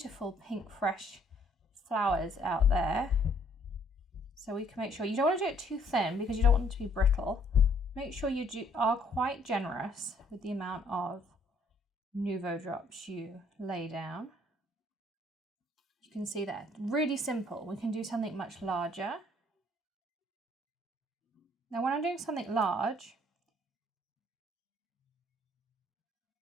pink fresh flowers out there. So we can make sure, you don't want to do it too thin because you don't want it to be brittle. Make sure you are quite generous with the amount of Nuvo Drops you lay down. You can see that, really simple. We can do something much larger. Now when I'm doing something large,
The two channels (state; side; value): normal; both; correlation 0.63